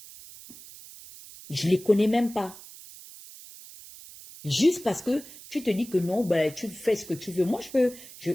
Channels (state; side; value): noise; right; hiss, 17 dB below the sound